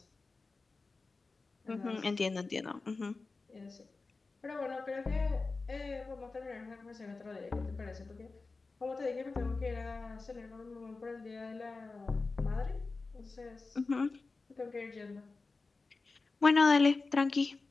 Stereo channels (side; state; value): right; quieter; 3.9 dB